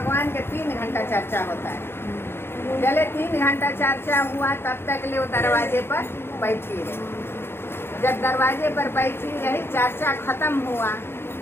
के 3 घंटा चर्चा होता है। जले 3 घंटा चर्चा हुआ तब तक ले वो दरवाजे पर बैठी रही। जब दरवाजे पर बैठी रही, चर्चा खत्म हुआ,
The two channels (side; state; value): right; late; 0.11 ms